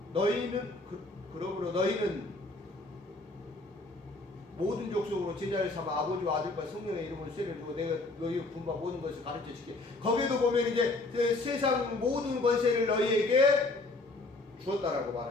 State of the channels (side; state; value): right; quieter; 3.1 dB